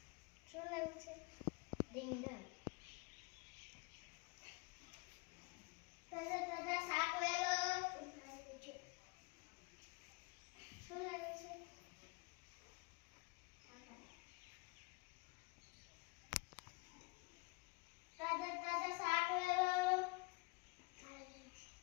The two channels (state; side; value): quieter; right; 27.5 dB